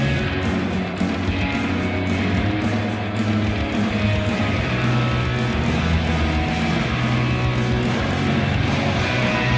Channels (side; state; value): both; identical; correlation 1.00